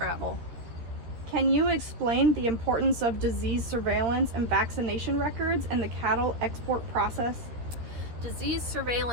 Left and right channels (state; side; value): late; left; 13 ms